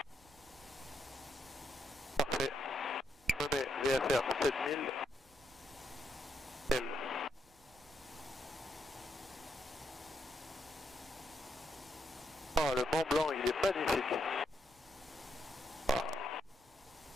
Parfait. Je me mets VFR 7000. L. Oh, le Mont Blanc, il est magnifique. Ah.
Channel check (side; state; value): both; normal; correlation 0.79